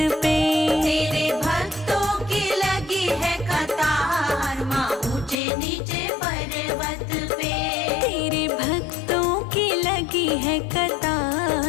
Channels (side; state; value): right; drops out; at 5.4 s